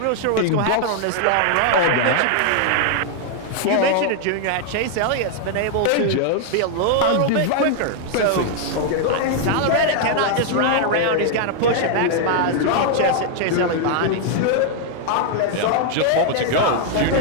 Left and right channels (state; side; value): different; both; correlation 0.00